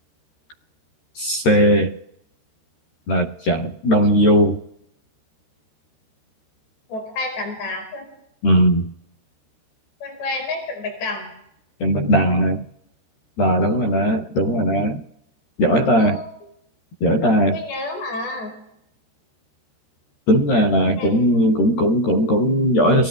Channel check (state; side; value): late; right; 13 ms